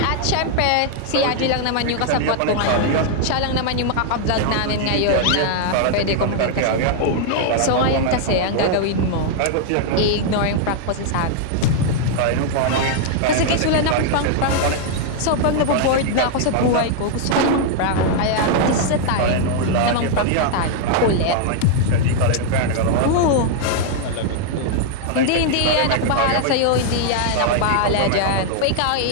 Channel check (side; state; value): both; different; correlation 0.00